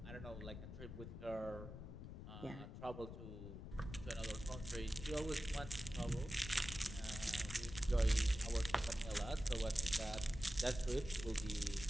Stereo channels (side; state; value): left; noise; rumble, 9 dB below the sound